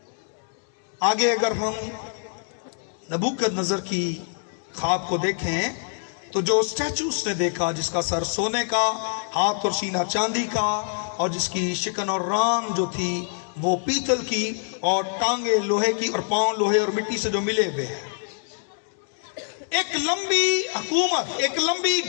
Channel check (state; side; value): silent; right; digital silence